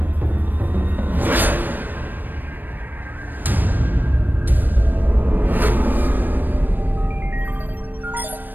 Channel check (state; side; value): late; left; 0.091 ms